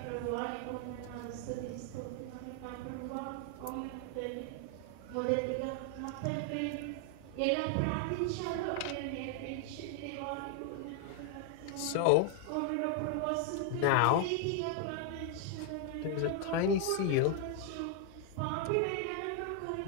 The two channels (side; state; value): both; different; correlation 0.00